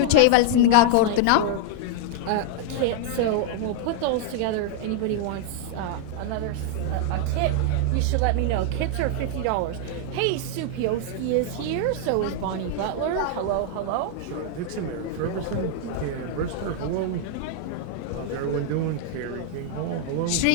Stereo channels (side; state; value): both; different; correlation 0.00